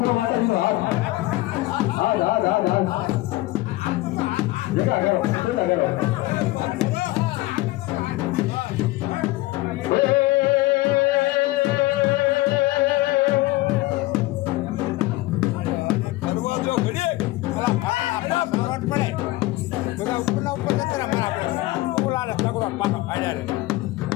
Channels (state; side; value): quieter; right; 18.9 dB